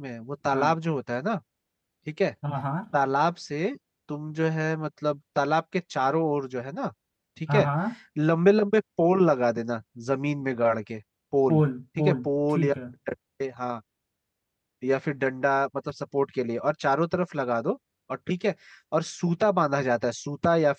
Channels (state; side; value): identical; both; correlation 1.00